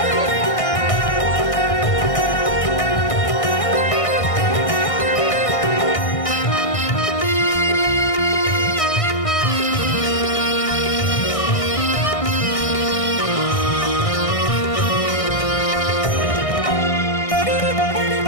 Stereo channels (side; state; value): right; late; 1.6 ms